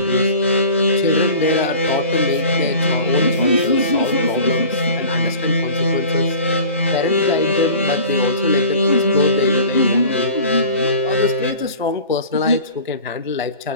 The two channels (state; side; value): inverted; both; correlation -0.42